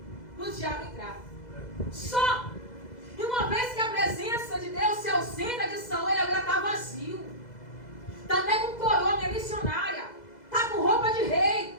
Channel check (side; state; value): right; late; 2.0 ms